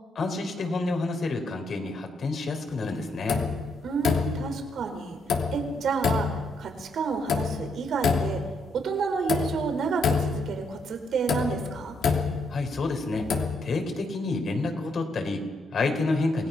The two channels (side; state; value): both; normal; correlation 0.75